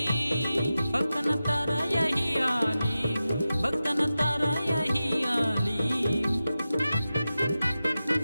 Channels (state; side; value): inverted; both; correlation -0.93